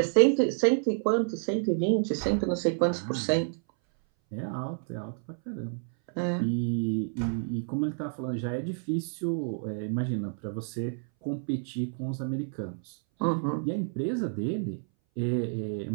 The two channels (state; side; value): silent; left; 58 dB below the other